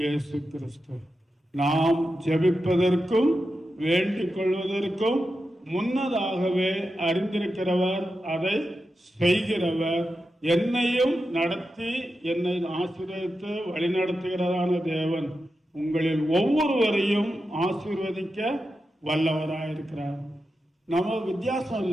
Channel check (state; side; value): normal; both; correlation 0.90